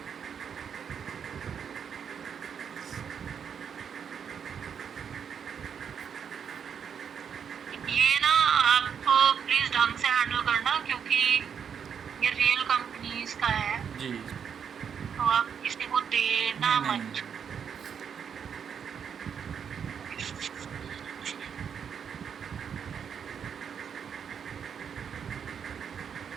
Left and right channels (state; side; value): quieter; left; 7.4 dB